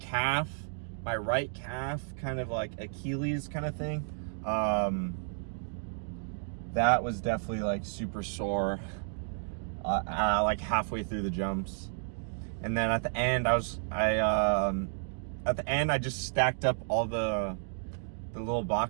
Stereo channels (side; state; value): left; silent; digital silence